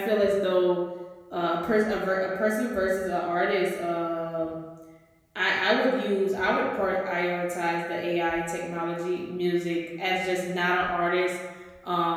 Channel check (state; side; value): identical; both; correlation 1.00